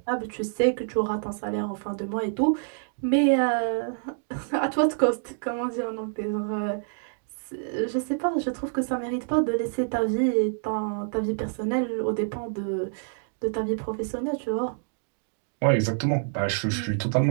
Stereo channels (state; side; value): silent; left; digital silence